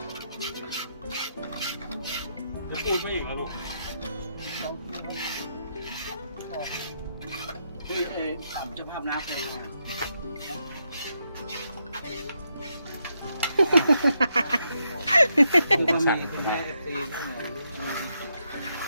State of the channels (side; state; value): both; inverted; correlation -0.80